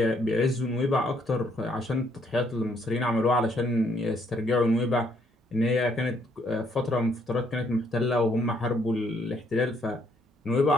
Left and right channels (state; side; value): normal; both; correlation 0.69